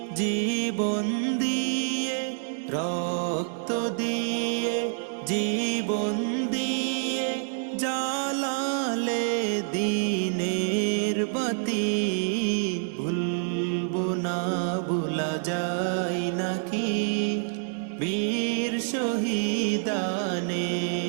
জীবন দিয়ে, রক্ত দিয়ে জীবন দিয়ে জালালে দিনের বাতি, ভুলবো না ভুলা যায় নাকি বীর শহীদানের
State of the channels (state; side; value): silent; left; digital silence